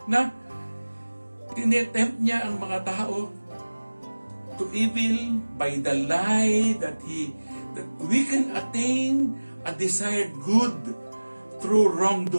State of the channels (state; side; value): inverted; both; correlation -1.00